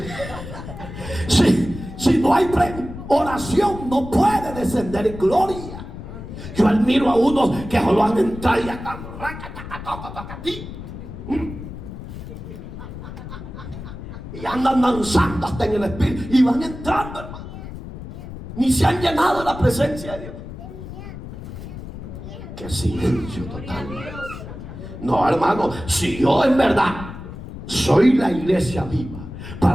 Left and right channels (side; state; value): left; noise; rumble, 11 dB below the sound